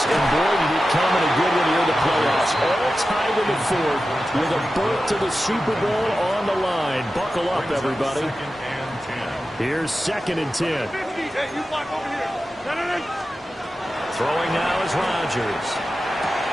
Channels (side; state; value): both; normal; correlation 0.93